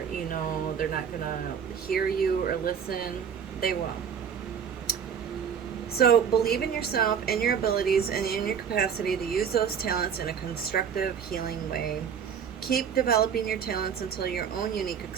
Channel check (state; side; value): quieter; left; 7.5 dB